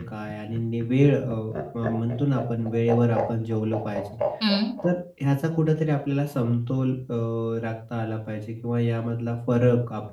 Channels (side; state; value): both; identical; correlation 1.00